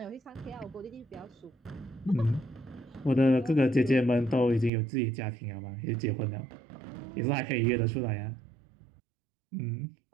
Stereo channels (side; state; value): left; drops out; at 4.7 s